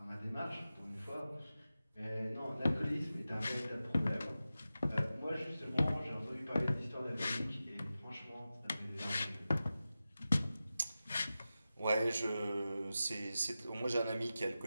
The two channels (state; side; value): inverted; both; correlation -0.94